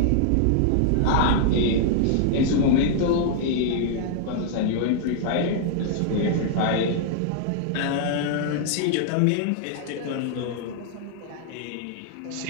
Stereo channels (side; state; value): both; different; correlation -0.01